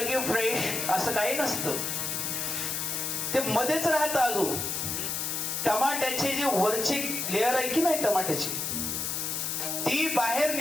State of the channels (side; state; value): left; noise; hiss, 1 dB below the sound